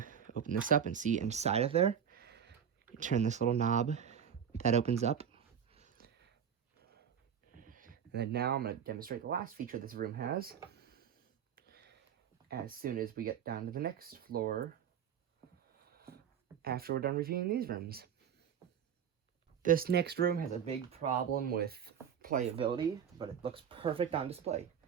open this up and see inside of there. You turn this little knob, that opens up. And then now I'm going to demonstrate the last feature this room has. As soon as we get down to the next floor, after we're done reviewing these rooms. This next room has a big problem with playability, but it looks perfect on display.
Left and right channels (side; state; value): left; quieter; 8.2 dB